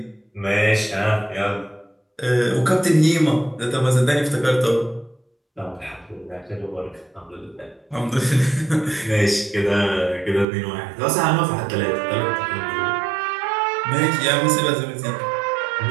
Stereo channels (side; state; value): left; drops out; at 10.5 s